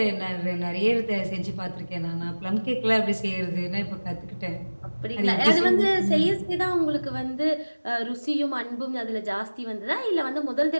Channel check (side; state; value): both; inverted; correlation -1.00